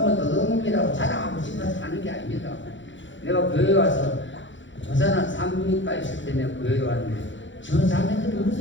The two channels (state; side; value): late; right; 0.54 ms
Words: 도덕놈이라고 자랑하고 싶어서 하는 게 아닙니다. 내가 교회 와서 부산한 산부인과 있을 때 내가 교회에 왔는데 저 자매들이